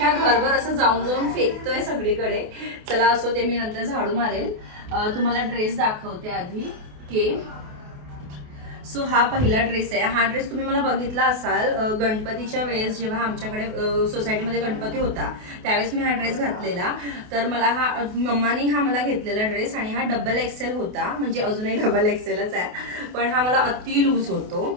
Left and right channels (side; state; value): left; late; 28 ms